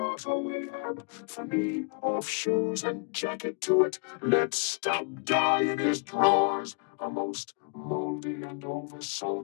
away, Ahab? For me, off shoes and jacket to it. Let Stubb die in his drawers, a most mouldy and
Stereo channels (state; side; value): quieter; right; 38.3 dB